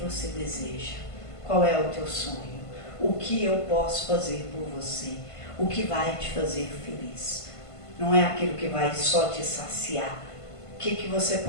deseja? Qual é o teu sonho? O que eu posso fazer por você? O que vai te fazer feliz? Não é aquilo que vai só te saciar. O que você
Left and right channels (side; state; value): right; late; 1.5 ms